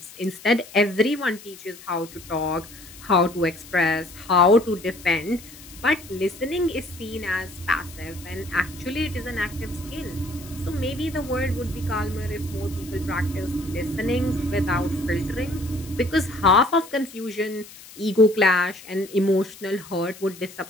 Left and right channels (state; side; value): noise; left; hiss, 18 dB below the sound